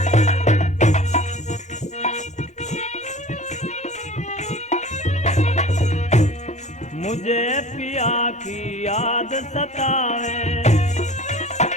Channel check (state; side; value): normal; both; correlation 0.42